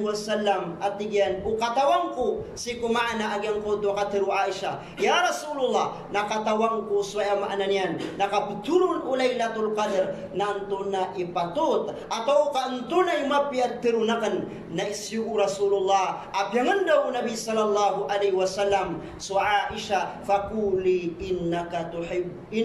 wasallam at tigyan ukatawang ko si kumaana agyang ko do katiru Aisha ya Rasulullah nakatawang ko so ay maana niyan nakaputurun Laylatul Qadr nanto na ipatut atau kanto na imapiat tirunakan na isyu Rasulullah apyangan daw Nabi sallallahu alaihi wasallam so Aisha fakuli innaka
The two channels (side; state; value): both; identical; correlation 1.00